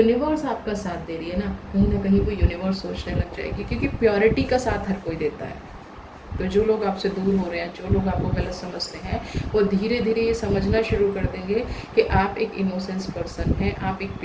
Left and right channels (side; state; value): both; identical; correlation 1.00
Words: आपका साथ दे रही है ना कहीं वो यूनिवर्स सोचने लग जाएगी, क्योंकि प्योरिटी का साथ हर कोई देता है। तो जो लोग आपसे दूर हो रहे हैं, जो लोग आपको गलत समझते हैं, वो धीरे धीरे ये समझना शुरू कर देंगे कि आप एक इनोसेंस पर्सन हैं, आप एक